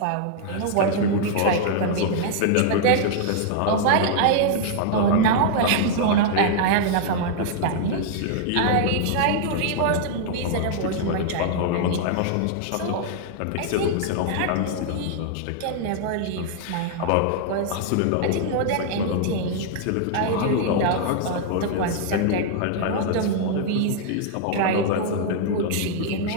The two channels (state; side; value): different; both; correlation 0.00